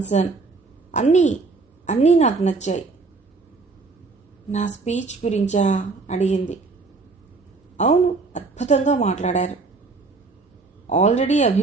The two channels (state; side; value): quieter; left; 4.0 dB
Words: అన్నీ నాకు నచ్చాయి. నా స్పీచ్ గురించా అడిగింది. అవును, అద్భుతంగా మాట్లాడారు. ఆల్రెడీ